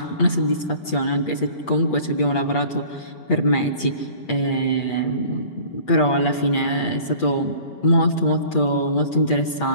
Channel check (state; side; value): late; right; 8.4 ms